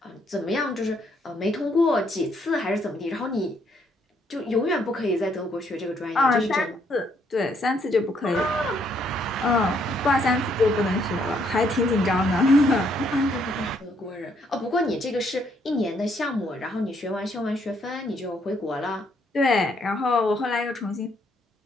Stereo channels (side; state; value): both; normal; correlation 0.71